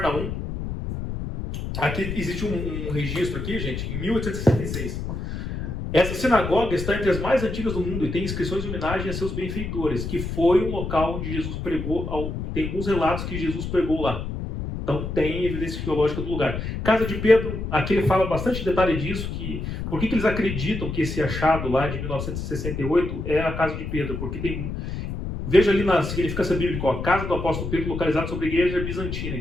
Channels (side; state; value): left; noise; rumble, 5 dB below the sound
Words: Aqui existe um registro aqui, gente, em 1866. Essa sinagoga está entre as mais antigas do mundo e tem inscrições de homenagem a seus benfeitores, que foi um local onde Jesus pregou. Tem alguns relatos que Jesus pregou lá. Então tem evidência arqueológica do lugar. Casa de Pedro, aqui ele fala bastante detalhe disso, que por que eles acreditam que esse achado lá de 1968 é a Casa de Pedro? Porque tem... Veja ali na significância bíblica, a casa do apóstolo Pedro localizada sobre a igreja bizantina.